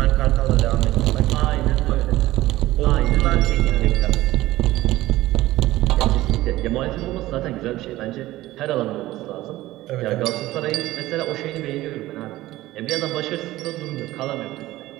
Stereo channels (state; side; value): quieter; left; 16.6 dB